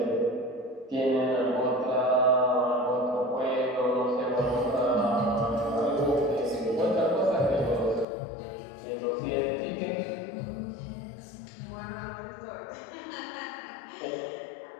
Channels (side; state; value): right; drops out; at 8.1 s